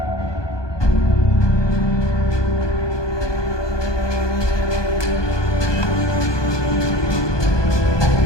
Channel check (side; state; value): right; late; 1.2 ms